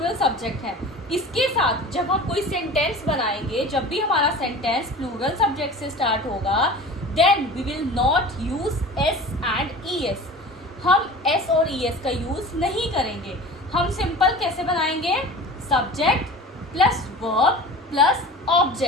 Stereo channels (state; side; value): normal; both; correlation 0.38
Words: सब्जेक्ट है। इसके साथ जब हम कोई सेंटेंस बनाएंगे, जब भी हमारा सेंटेंस प्लूरल सब्जेक्ट से स्टार्ट होगा, then we will not use S and ES। हम S और ES का यूज नहीं करेंगे। हम सिंपल कैसे बनाएंगे, subject plus verb plus